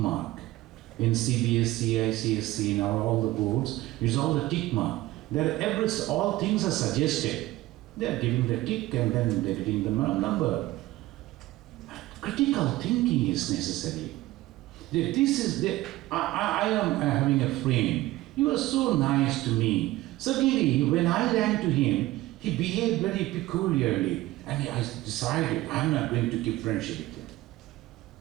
In CBSC, ICSC, now all the boards, it's all the tick mark. All things are suggested. They are giving the tick and then they are getting the number. Critical thinking is necessary. I am having a friend. He was so nice to me. Suddenly, when I ran to him, he behaved very peculiarly. And I decided, I'm not going to keep friendship with him.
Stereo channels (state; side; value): quieter; left; 17.4 dB